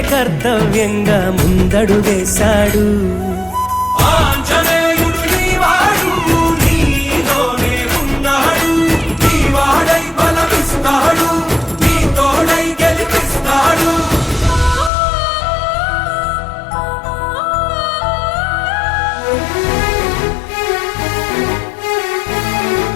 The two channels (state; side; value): drops out; right; at 14.9 s